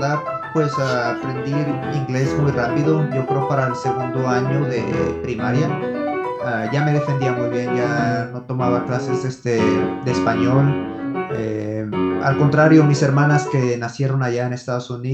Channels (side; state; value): both; identical; correlation 1.00